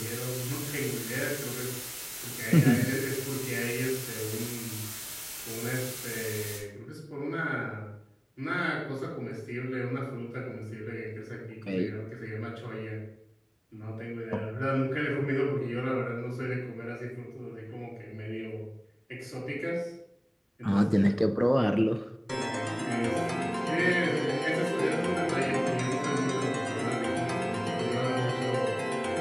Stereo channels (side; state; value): both; identical; correlation 1.00